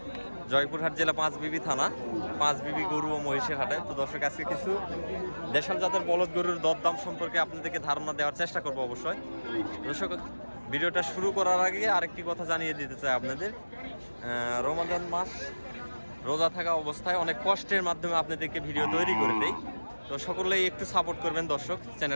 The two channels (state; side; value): inverted; both; correlation -1.00